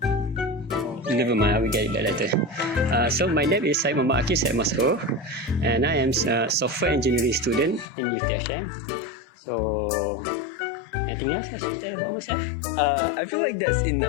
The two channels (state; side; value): drops out; right; at 7.9 s